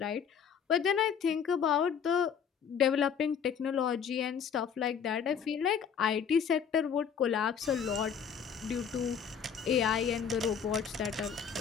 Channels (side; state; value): right; quieter; 7.3 dB